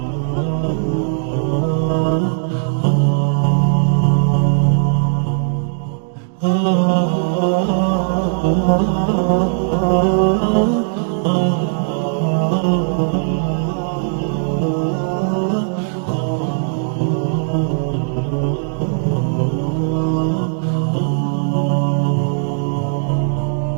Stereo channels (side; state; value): left; silent; digital silence